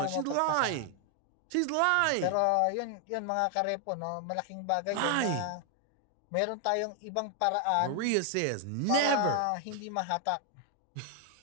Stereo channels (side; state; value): both; different; correlation 0.00